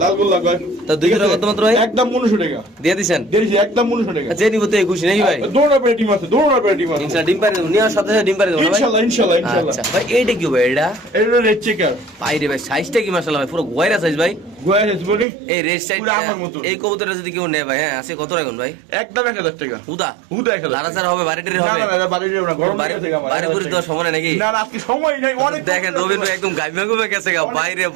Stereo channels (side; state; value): left; drops out; at 15.2 s